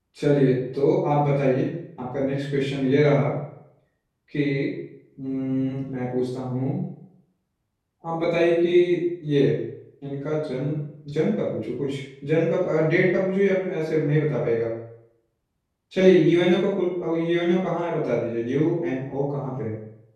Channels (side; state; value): both; identical; correlation 1.00